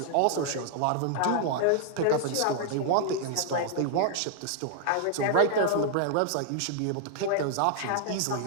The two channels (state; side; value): different; both; correlation -0.01